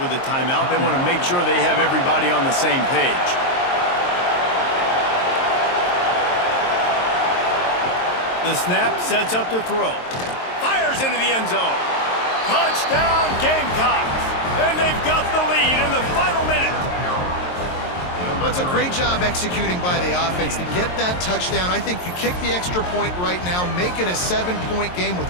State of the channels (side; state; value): right; late; 22 ms